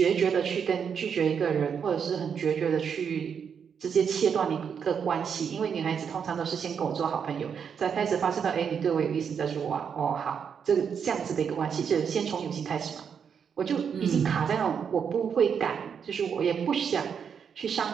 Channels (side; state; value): left; quieter; 7.1 dB